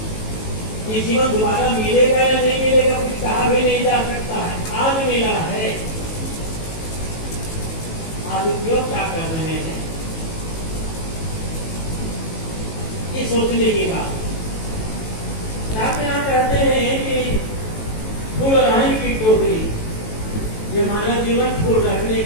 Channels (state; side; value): late; right; 18 ms